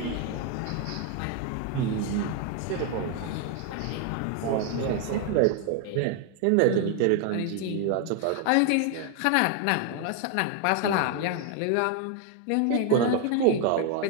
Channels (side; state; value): both; different; correlation 0.00